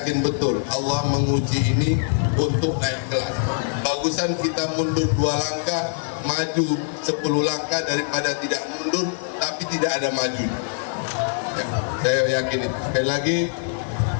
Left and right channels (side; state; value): right; silent; digital silence